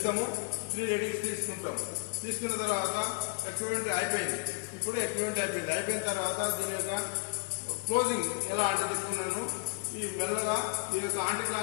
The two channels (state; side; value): quieter; right; 39.0 dB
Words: 3 రీడింగ్స్ తీసుకున్న తర్వాత ఎక్విప్మెంట్ అయిపోయింది. ఇప్పుడు ఎక్విప్మెంట్ అయిపోయిన తర్వాత దీని యొక్క క్లోజింగ్ ఎలా అంటే చెప్తున్నాను. ఈ మెల్లగా ఈ యొక్క యాంటీ